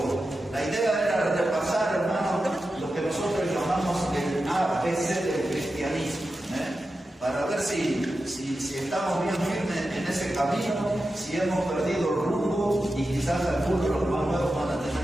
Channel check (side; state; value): both; normal; correlation 0.91